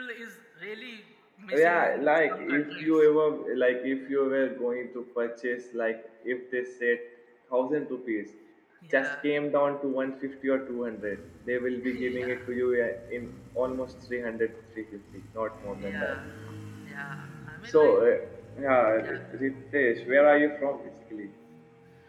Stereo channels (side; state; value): both; identical; correlation 1.00